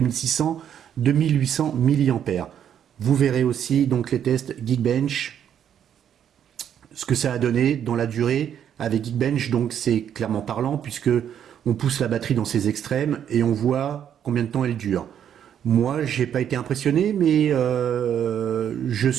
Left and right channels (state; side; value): quieter; left; 9.3 dB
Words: mAh. Vous verrez aussi donc les tests Geekbench, ce que ça a donné dans la durée avec Geekbench. Donc c'est clairement parlant puisque on pousse la batterie dans ses extrêmes et on voit combien de temps elle dure. Moi, j'ai pas été impressionné, mais je